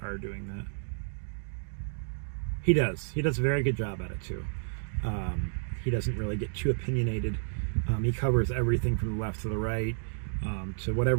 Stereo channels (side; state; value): left; silent; digital silence